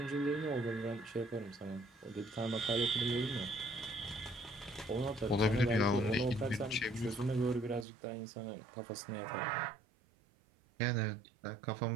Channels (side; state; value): left; drops out; at 7.9 s